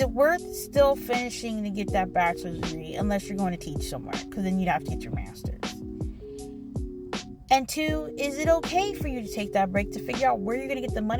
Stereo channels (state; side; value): identical; both; correlation 1.00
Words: it worth still finishing to get that bachelor's degree unless you're going to teach somewhere? Because then you'd have to get your master's. And two, is it okay for you to take that break to figure out where you're going to get the